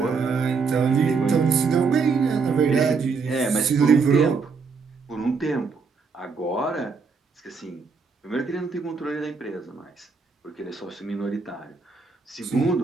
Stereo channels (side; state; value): left; quieter; 5.0 dB